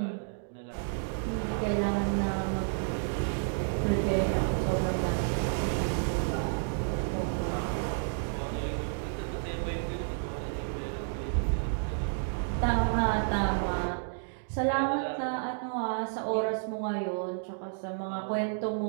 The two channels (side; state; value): left; silent; digital silence